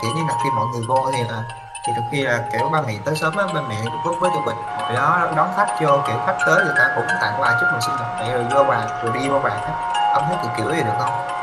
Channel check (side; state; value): both; identical; correlation 1.00